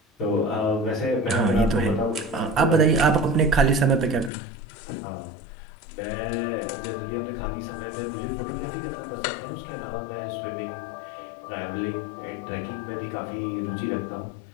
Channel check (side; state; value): right; drops out; at 4.3 s